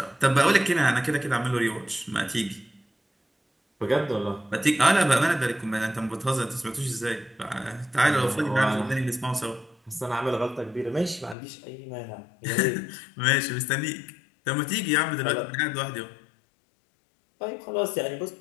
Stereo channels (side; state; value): right; drops out; at 11.4 s